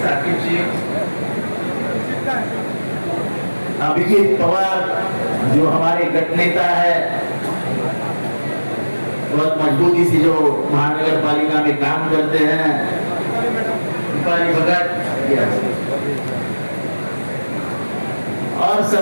अभिजीत पवार जो हमारे गठ नेता है, बहुत मजबूती से जो महानगर पालिका में काम करते हैं, दीपाली भगत और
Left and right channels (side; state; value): both; inverted; correlation -1.00